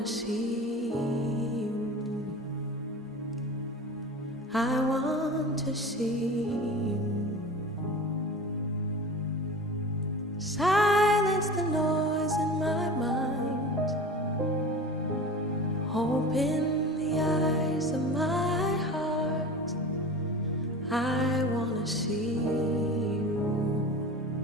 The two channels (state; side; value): normal; both; correlation 0.34